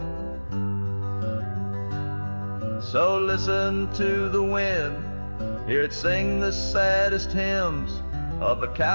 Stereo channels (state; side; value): inverted; both; correlation -1.00